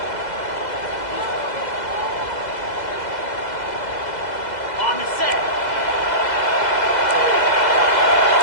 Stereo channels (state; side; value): late; right; 2.0 ms